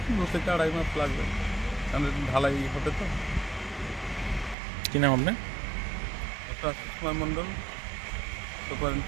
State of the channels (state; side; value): drops out; left; at 4.5 s